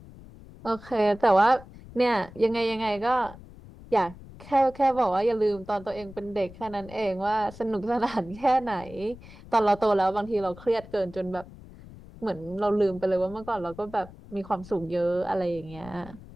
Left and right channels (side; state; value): left; noise; rumble, 18 dB below the sound